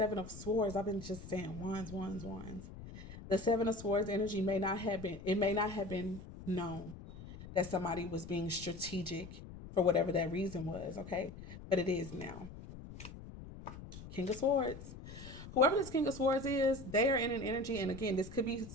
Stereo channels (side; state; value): left; noise; rumble, 13 dB below the sound